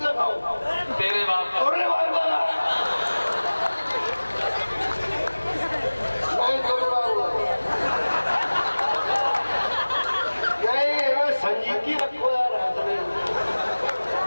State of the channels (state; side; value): inverted; both; correlation -1.00